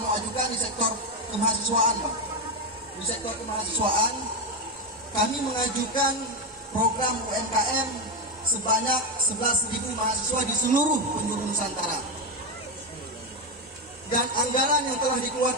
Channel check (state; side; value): normal; both; correlation 0.10